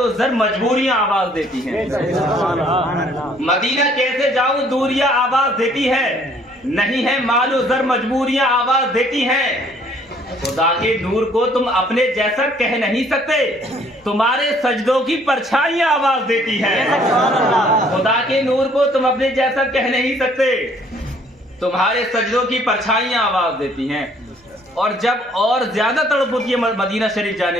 زر مجبوریاں آواز دیتی ہیں. مدینہ کیسے جاؤں دوریاں آواز دیتی ہے، نہیں ہے مال و زر مجبوریاں آواز دیتی ہیں. خدا کے نور کو تم اپنے جیسا کہہ نہیں سکتے، تمہارے سجدوں کی پرچھائیاں آواز دیتی ہیں. خدا کے نور کو تم اپنے جیسا کہہ نہیں سکتے، تمہارے سجدوں کی پرچھائیاں آواز دیتی ہیں. اور جب اور زیادہ تڑپ ہوتی ہے مدینہ شریف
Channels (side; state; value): both; normal; correlation 0.61